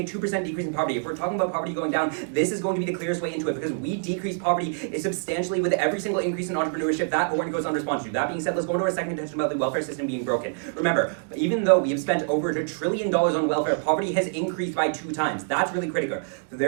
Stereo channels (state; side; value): silent; left; digital silence